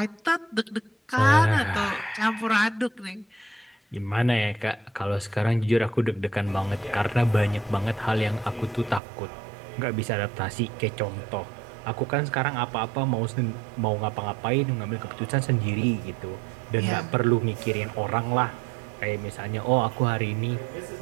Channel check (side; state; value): left; drops out; at 9.0 s